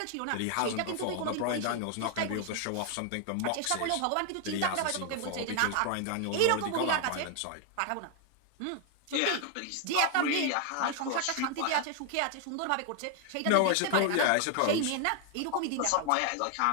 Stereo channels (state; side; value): different; both; correlation 0.00